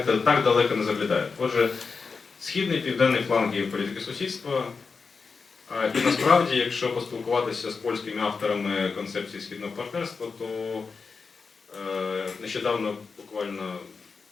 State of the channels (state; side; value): quieter; right; 4.9 dB